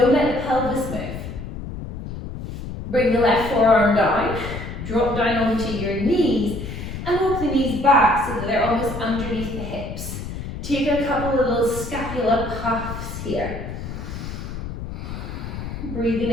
let the pelvis move. Bring the left forearm down, drop down onto your knees, and walk the knees back so that they're almost underneath the hips. Take a couple of little scapula puffs here. Breathing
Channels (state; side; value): noise; left; rumble, 8 dB below the sound